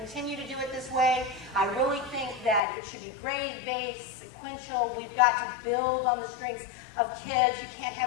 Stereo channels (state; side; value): drops out; right; at 2.6 s